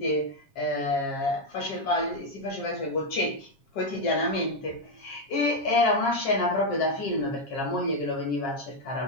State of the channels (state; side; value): late; right; 7.3 ms